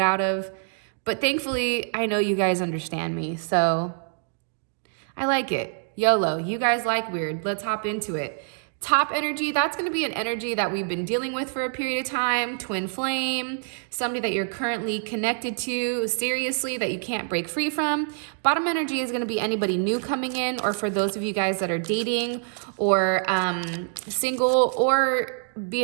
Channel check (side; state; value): left; silent; 61 dB below the other